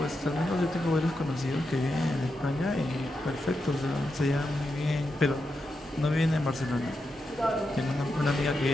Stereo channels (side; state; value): both; normal; correlation 0.87